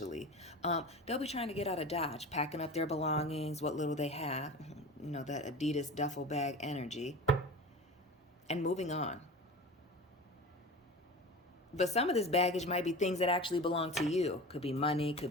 They'll be trying to get out of Dodge, packing up their belongings, what little they have, you know, that Adidas duffel bag energy, and moving on. But some of this baggage might be things that actually belong to you. Could be money,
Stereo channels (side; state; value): both; normal; correlation 0.33